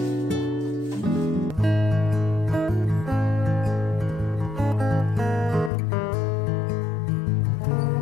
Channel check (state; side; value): drops out; right; at 5.7 s